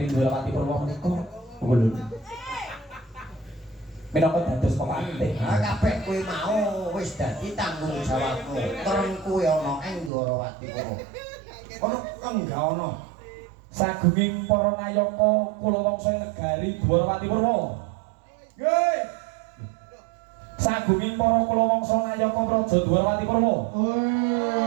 Dwarawati Purwa menika. Kula minangka dados pemantih. Ha kabeh kuwi mau wis dadi tanggung jawabmu. Terus kuwi ana ing Dwarawati Purwa. Ono enggak ono. Sagunging para nayaka kula wangsa negari Dwarawati Purwa. Nggih. Sagunging para kula wangsa nayaka praja Dwarawati Purwa.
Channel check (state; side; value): drops out; left; at 10.1 s